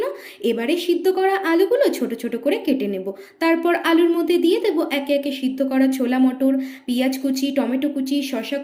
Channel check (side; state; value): both; identical; correlation 1.00